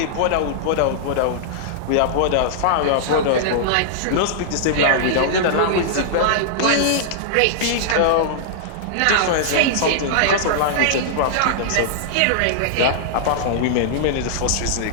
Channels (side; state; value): both; different; correlation -0.01